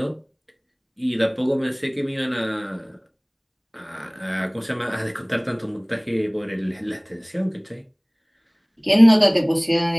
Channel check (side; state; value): both; identical; correlation 1.00